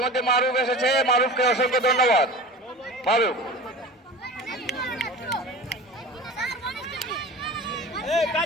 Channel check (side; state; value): both; normal; correlation 0.35